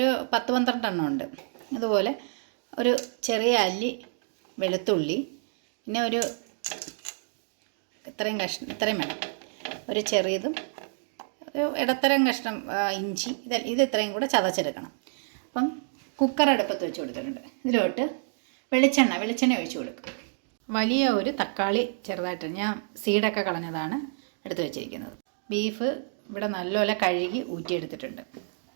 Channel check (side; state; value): left; silent; digital silence